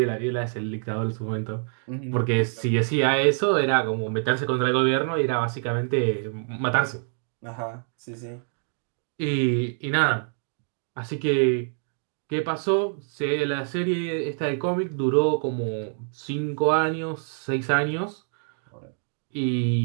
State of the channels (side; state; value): left; silent; 61 dB below the other